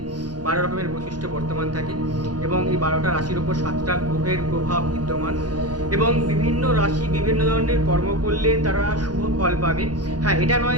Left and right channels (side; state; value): left; late; 0.69 ms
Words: 12 রকমের বৈশিষ্ট্য বর্তমান থাকে এবং এই 12টা রাশির ওপর 7টা গ্রহের প্রভাব বিদ্যমান এবং বিভিন্ন রাশি বিভিন্ন ধরনের কর্ম করলে তারা শুভ ফল পাবে। হ্যাঁ, এটা